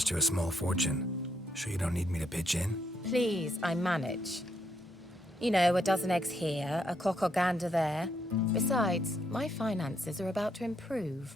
you a small fortune. Sure you don't need me to pitch in? Please, I manage. You know, a dozen eggs here, a cock or gander there. Besides, my finances are about to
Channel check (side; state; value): both; normal; correlation 0.75